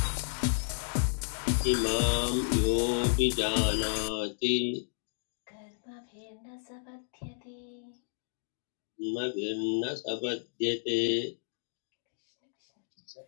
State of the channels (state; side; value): silent; right; digital silence